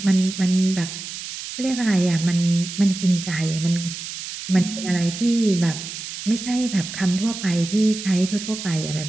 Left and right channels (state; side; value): noise; right; hiss, 9 dB below the sound